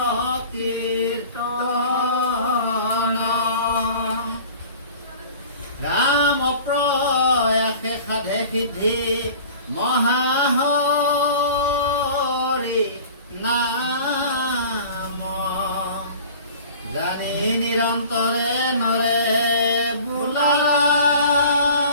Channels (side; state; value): both; inverted; correlation -0.44